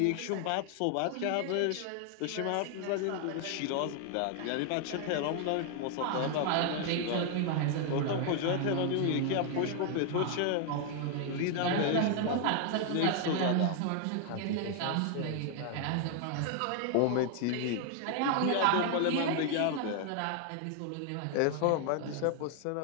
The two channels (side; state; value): both; different; correlation 0.00